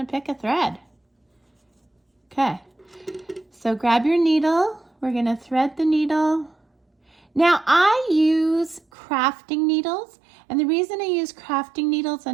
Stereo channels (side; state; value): left; drops out; at 8.8 s